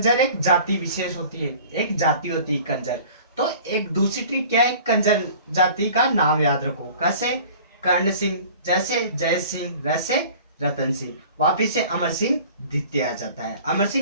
एक जाति विशेष होती है, एक जाति होती है कंजर। तो एक दूसरी ट्रिक क्या है? कंजर जाति का नाम याद रखो। कैसे? कर्ण सिंह, जैसे जय सिंह, वैसे रतन सिंह। वापिस से अमर सिंह द्वितीय आ जाता है, अमर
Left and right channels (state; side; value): inverted; both; correlation -0.46